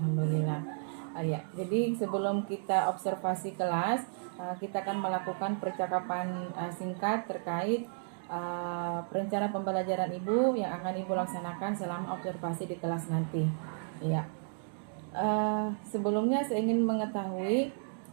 Ya, jadi sebelum kita observasi kelas, kita akan melakukan percakapan singkat terkait rencana pembelajaran Ibu yang akan Ibu laksanakan selama observasi di kelas nanti. Ya. Sebelumnya saya ingin mengetahui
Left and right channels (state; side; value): silent; left; digital silence